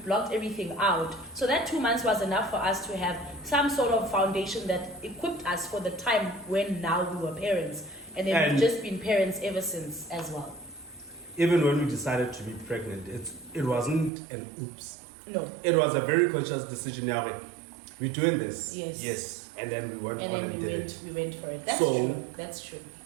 everything out. So that 2 months was enough for us to have some sort of foundation that equipped us for the time when now we were parents. And then we've just been parents ever since as well. Even when we decided to be pregnant, it wasn't an oops. No. It was a very conscious decision. We're doing this. Yes. And then we went and on then and we did went, it. We went for it. That's true.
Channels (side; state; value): left; drops out; at 14.1 s